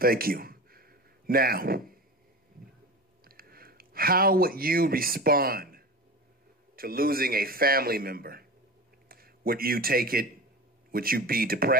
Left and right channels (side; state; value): both; normal; correlation 0.30